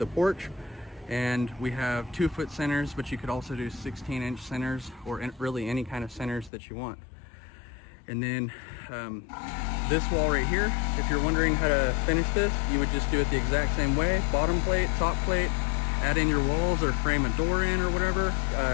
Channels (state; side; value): drops out; right; at 6.5 s